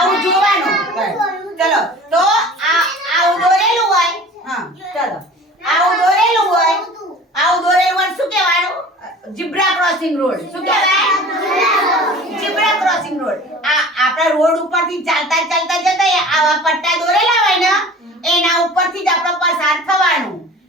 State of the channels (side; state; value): both; normal; correlation 0.42